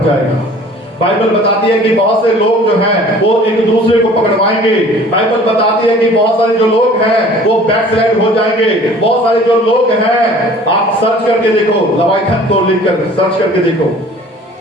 जाएगा। बाइबल बताती है कि बहुत से लोग जो हैं वो एक दूसरे को पकड़वाएंगे। बाइबल बताती है कि बहुत सारे जो लोग हैं वो बैकस्लाइड हो जाएंगे। बहुत सारे जो लोग हैं, आप सर्च करके देखो, लवाइथन को लिखकर सर्च करके देखो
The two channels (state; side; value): normal; both; correlation 0.49